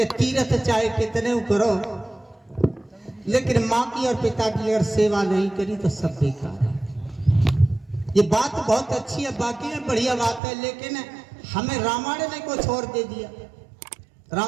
तीर्थ चाहे कितने करो, लेकिन माँ की और पिता की अगर सेवा नहीं करी तो सब बेकार है। ये बात बहुत अच्छी है, बाकी में बढ़िया बात है, लेकिन हमें रामायण ने कुछ और दे दिया,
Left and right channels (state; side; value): drops out; left; at 10.4 s